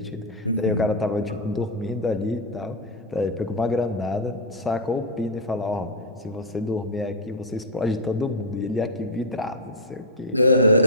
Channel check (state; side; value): normal; both; correlation -0.03